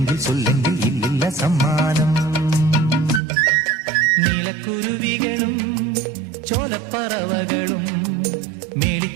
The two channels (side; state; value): left; drops out; at 3.2 s